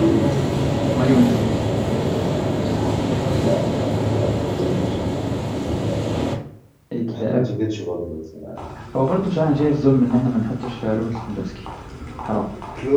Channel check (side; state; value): both; identical; correlation 1.00